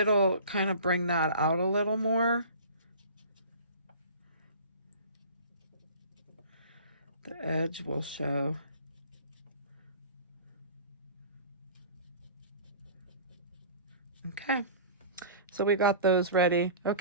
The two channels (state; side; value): inverted; both; correlation -0.41